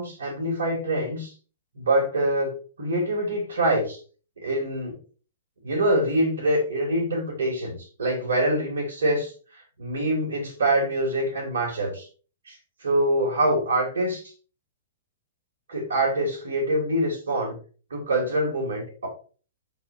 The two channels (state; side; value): inverted; both; correlation -0.52